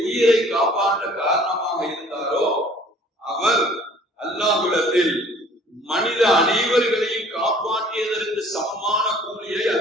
உயிரை காப்பாற்ற காரணமாக இருந்தாரோ அவர் அல்லாஹ்விடத்தில் மனித அனைவர்களையும் காப்பாற்றியதற்கு சமமான கூலியை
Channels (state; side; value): normal; both; correlation 0.53